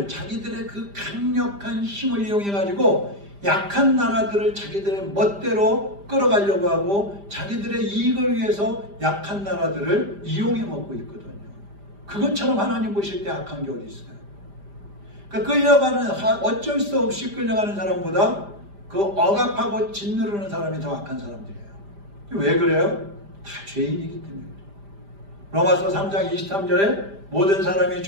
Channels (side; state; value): left; late; 5.0 ms